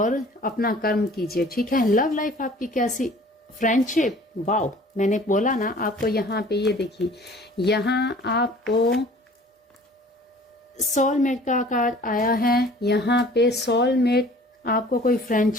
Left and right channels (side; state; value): both; normal; correlation 0.49